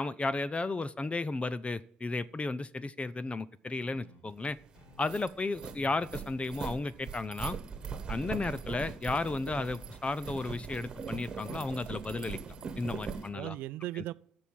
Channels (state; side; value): normal; both; correlation 0.82